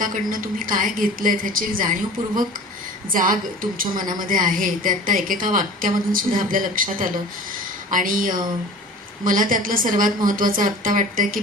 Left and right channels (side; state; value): both; normal; correlation 0.41